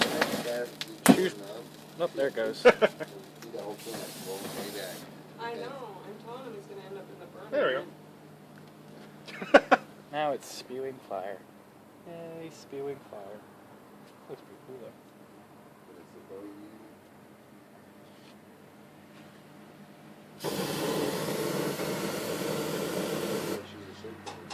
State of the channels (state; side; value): identical; both; correlation 1.00